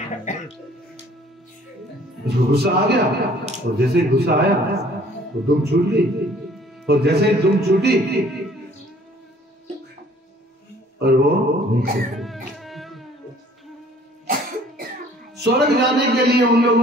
उसको गुस्सा आ गया और जैसे ही गुस्सा आया तो दुम छूट गई। और जैसे ही दुम छूटी और वो नीचे। स्वर्ग जाने के लिए उन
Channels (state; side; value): normal; both; correlation 0.55